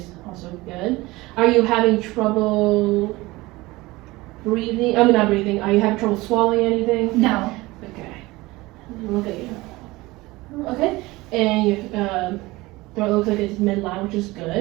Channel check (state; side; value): quieter; left; 20.7 dB